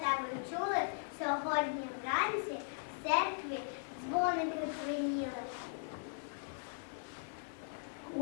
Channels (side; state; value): right; silent; 52 dB below the other